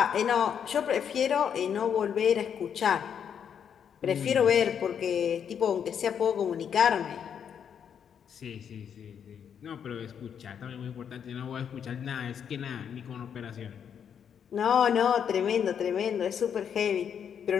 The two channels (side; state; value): right; quieter; 8.0 dB